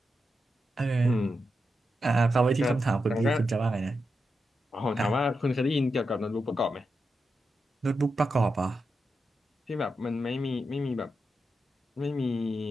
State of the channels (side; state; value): both; normal; correlation 0.87